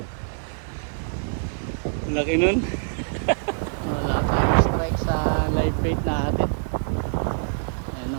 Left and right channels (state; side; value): silent; left; digital silence